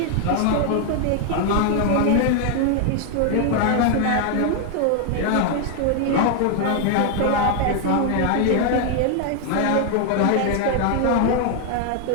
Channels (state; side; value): different; both; correlation 0.00